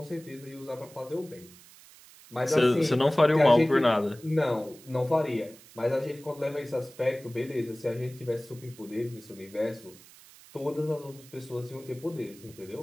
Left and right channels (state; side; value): noise; right; hiss, 22 dB below the sound